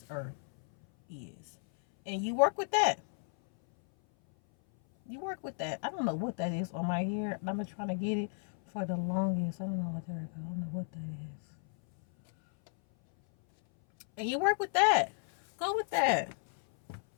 earth is, and you work with that. You work with that. I don't know what that is on my ear. I've been trying to get it for the longest. I don't know what there we go. I don't know what that is. And you work with that. Go with that.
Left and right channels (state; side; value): silent; right; 56 dB below the other